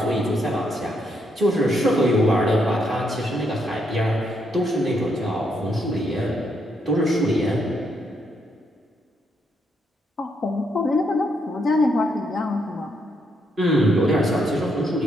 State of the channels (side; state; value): both; normal; correlation 0.76